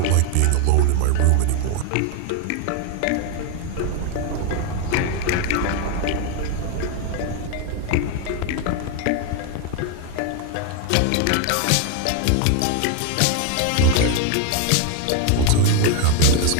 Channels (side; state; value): both; different; correlation 0.01